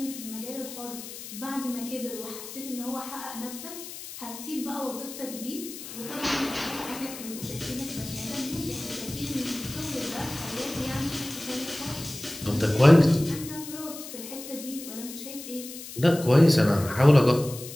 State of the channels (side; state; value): left; noise; hiss, 12 dB below the sound